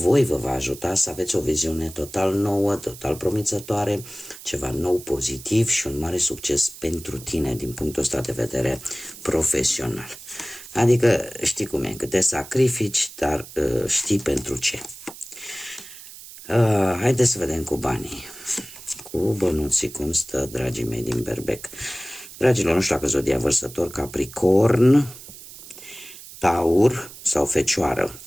vă va ajuta să aveți o viziune total nouă, total promițătoare, ceva nou, pozitiv și un mare succes pentru tine din punctul ăsta de vedere profesional. Adică știi cum e, că te sacrifici, dar știi pentru ce. Haideți să vedem cu banii, cu bănuții, cum stă, dragii mei din Berbec. Dragilor, nu știu dacă zodia vărsător, Capricorn, Taur sau Fecioară,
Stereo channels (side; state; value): right; noise; hiss, 16 dB below the sound